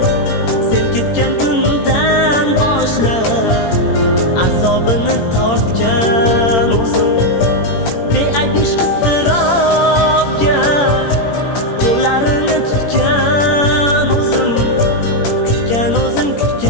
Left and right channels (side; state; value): right; late; 18 ms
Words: Sen ketgan kundan boshlab azobini tortgan o'zim. Beayb ishq iztirobga qo'llarini tutgan o'zim. Kutgan o'zim,